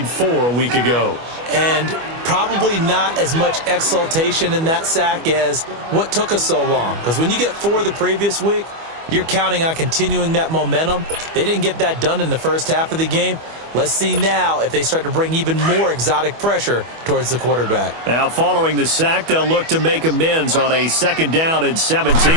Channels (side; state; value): left; late; 25 ms